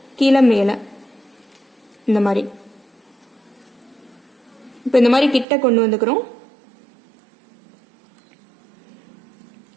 கீழே மேலே இந்த மாதிரி. இப்போ இந்த மாதிரி கிட்ட கொண்டு வந்துக்கிறோம்.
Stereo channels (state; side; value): drops out; left; at 5.5 s